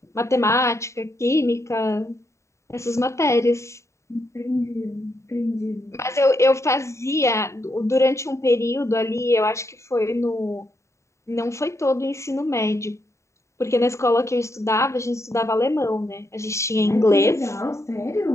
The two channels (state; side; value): late; right; 0.14 ms